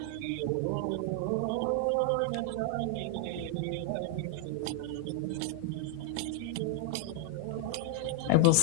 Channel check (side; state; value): both; different; correlation 0.00